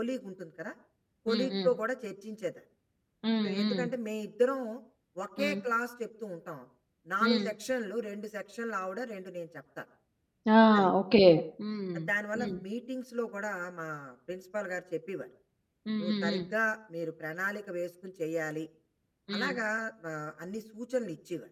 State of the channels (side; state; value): both; identical; correlation 1.00